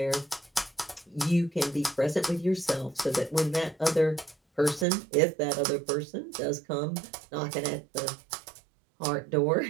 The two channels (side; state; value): left; drops out; at 4.9 s